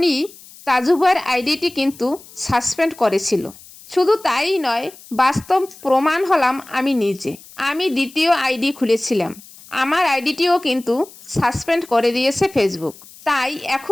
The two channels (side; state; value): left; noise; hiss, 21 dB below the sound